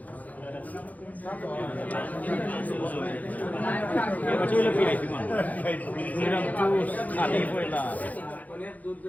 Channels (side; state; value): right; late; 0.078 ms